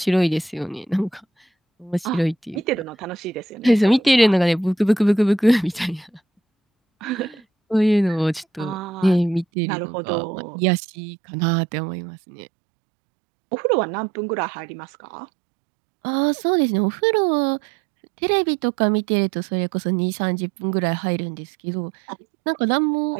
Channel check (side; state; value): left; drops out; at 9.5 s